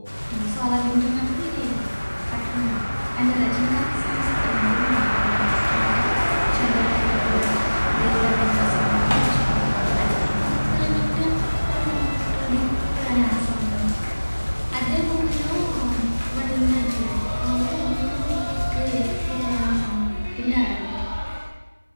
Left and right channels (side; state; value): both; inverted; correlation -1.00